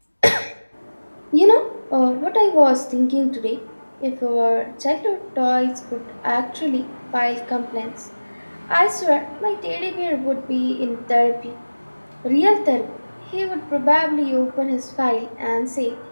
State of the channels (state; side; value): inverted; both; correlation -1.00